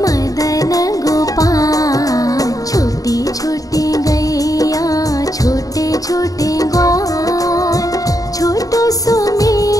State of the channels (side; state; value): right; late; 0.17 ms